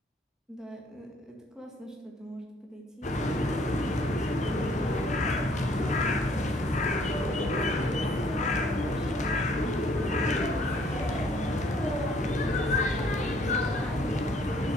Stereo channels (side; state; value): both; normal; correlation 0.62